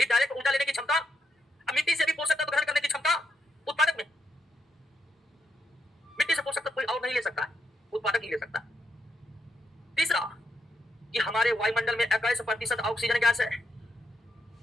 डायरेक्ट ऊर्जा लेने की क्षमता, मिट्टी से भी पोषक तत्व ग्रहण करने की क्षमता उत्पादक में। मिट्टी से पोषक तत्व कोई और नहीं ले सकता है, उत्पादक ही ले सकता है। तीसरा कि हमारे वायुमंडल में 21% ऑक्सीजन गैस है,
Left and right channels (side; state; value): both; normal; correlation 0.80